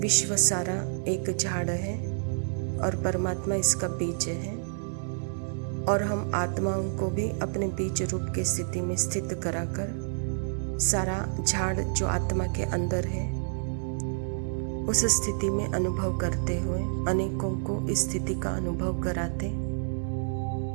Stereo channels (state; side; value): silent; left; digital silence